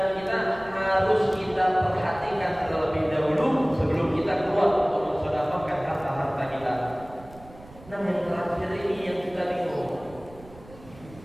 kita harus kita perhatikan terlebih dahulu sebelum kita keluar untuk mensedekahkan harta-harta kita. Nah, yang terakhir ini yang kita bingung.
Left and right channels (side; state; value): right; noise; rumble, 20 dB below the sound